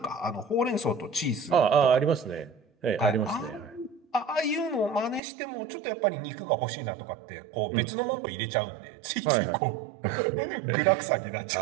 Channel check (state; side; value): drops out; left; at 5.2 s